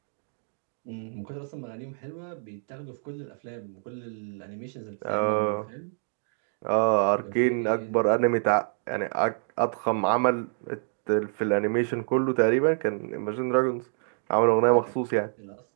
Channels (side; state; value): left; silent; digital silence